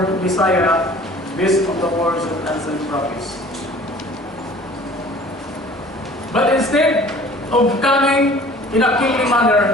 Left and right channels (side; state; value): both; normal; correlation 0.48